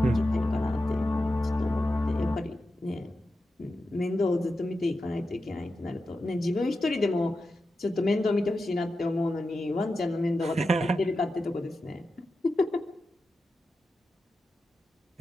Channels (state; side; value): normal; both; correlation 0.90